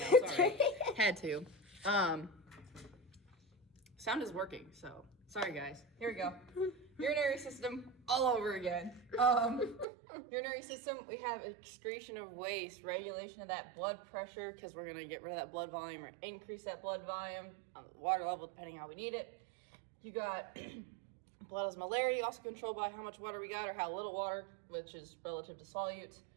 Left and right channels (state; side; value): drops out; left; at 9.9 s